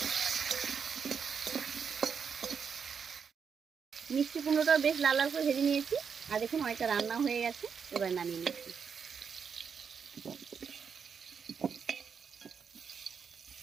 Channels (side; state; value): left; quieter; 6.5 dB